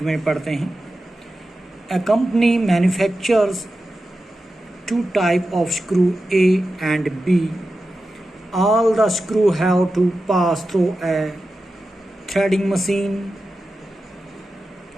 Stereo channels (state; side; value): normal; both; correlation 0.92